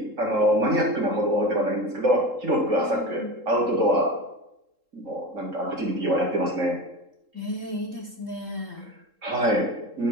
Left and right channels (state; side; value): late; left; 3.7 ms